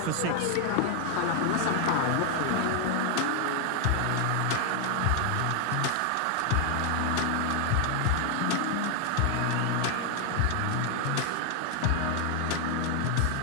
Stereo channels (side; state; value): both; different; correlation 0.00